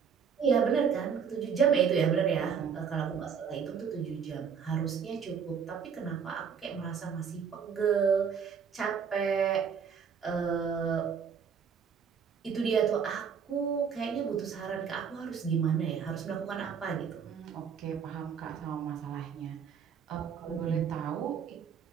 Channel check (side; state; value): left; quieter; 6.9 dB